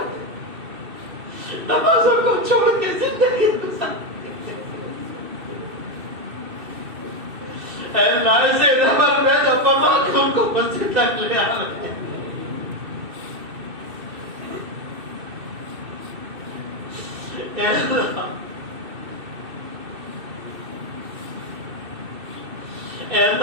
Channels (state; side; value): late; left; 2.6 ms